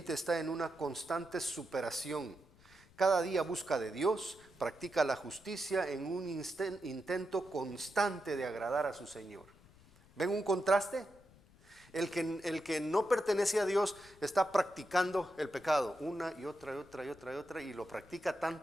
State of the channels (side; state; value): left; noise; rumble, 26 dB below the sound